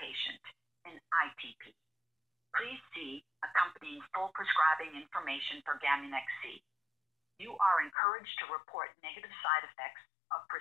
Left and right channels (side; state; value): right; drops out; at 7.9 s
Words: in ITP. Please see accompanying full prescribing information for Gamunex C. You are encouraged to report negative side effects of